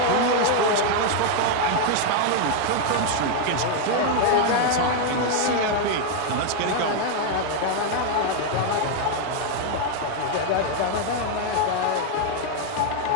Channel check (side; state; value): both; different; correlation 0.00